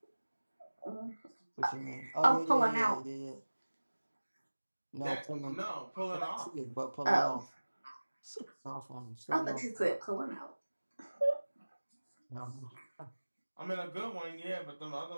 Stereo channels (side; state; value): both; inverted; correlation -1.00